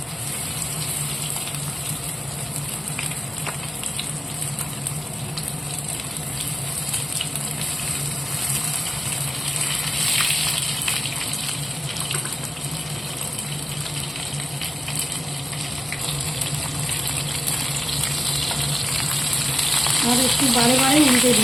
আর একটু বারে বারে উল্টে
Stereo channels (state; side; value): normal; both; correlation 0.95